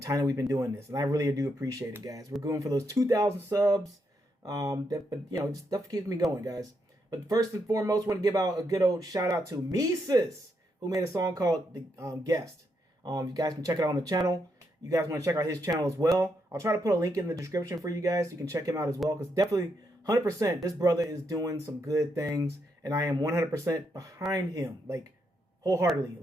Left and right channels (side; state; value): both; normal; correlation 0.80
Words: time that we've been doing this, and I really do appreciate it, guys. We're going for those 2,000 subs. Just stuff keeps me going, guys. But first and foremost, I want to give out a good old shout out to Mises, who made a song called "The Guest." You guys can check it out on the channel. You guys want to check out his channel as well. I'll try to put a link in the description for you guys so you can check him out as well, because definitely 100% this brother is doing some good things, and I am 100% behind him, like wholeheartedly,